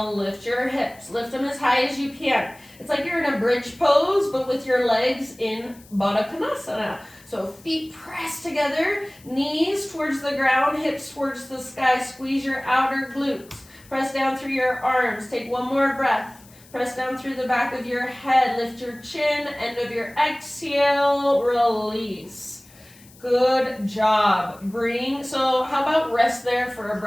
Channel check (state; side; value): noise; left; hiss, 25 dB below the sound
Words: lift your hips. Lift them as high as you can. It's like you're in a bridge pose, but with your legs in Baddha Konasana. So feet press together, knees towards the ground, hips towards the sky. Squeeze your outer glutes. Press down through your arms. Take one more breath. Press down through the back of your head. Lift your chin. End of your exhale. Release. Good job. So how about rest there for a